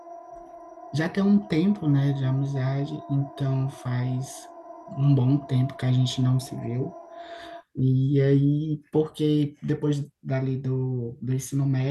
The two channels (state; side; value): identical; both; correlation 1.00